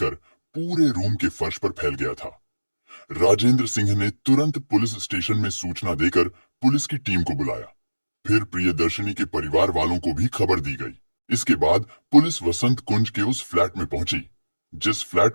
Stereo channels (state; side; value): inverted; both; correlation -1.00